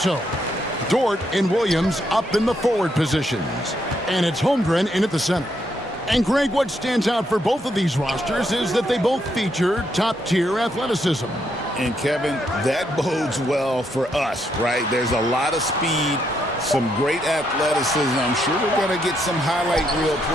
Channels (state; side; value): normal; both; correlation 0.76